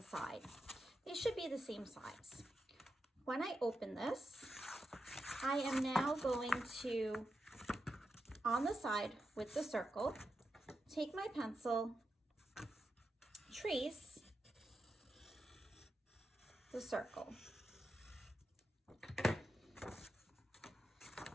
They should be the same size. When I open this, I am now going to, on the side with the circle, take my pencil, trace the circle. And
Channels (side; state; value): both; normal; correlation 0.88